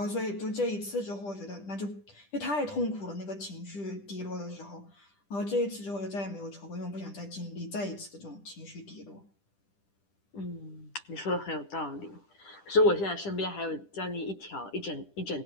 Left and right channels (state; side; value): late; right; 10 ms